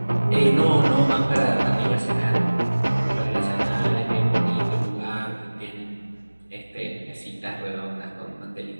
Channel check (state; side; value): inverted; both; correlation -1.00